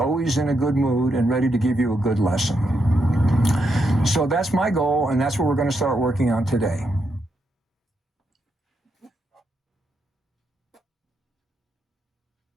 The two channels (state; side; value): normal; both; correlation 0.81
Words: in a good mood and ready to give you a good lesson. So that's my goal, and that's what we're going to start working on today.